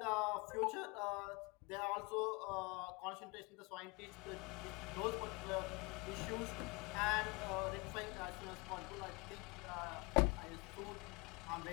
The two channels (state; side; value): quieter; right; 27.9 dB